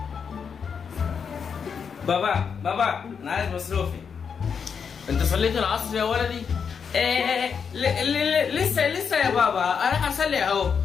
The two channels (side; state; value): right; quieter; 6.5 dB